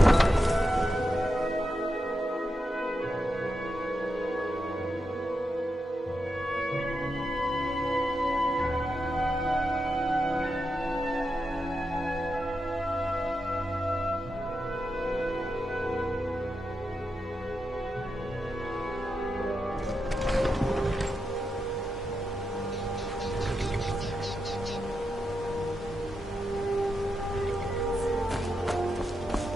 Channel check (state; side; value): normal; both; correlation 0.87